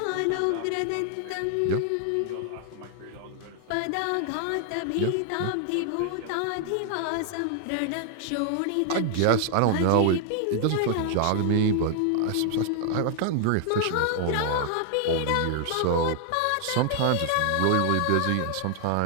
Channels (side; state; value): both; different; correlation 0.00